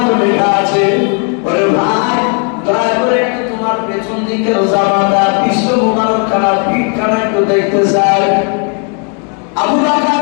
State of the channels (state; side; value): quieter; right; 40.0 dB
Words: লেখা আছে। ওরে ভাই দয়া করে একটু তোমার পেছন দিকের জামাটা বিশ্ব মুবারক খানা পিঠ খানা একটু দেখতে চাই। আবু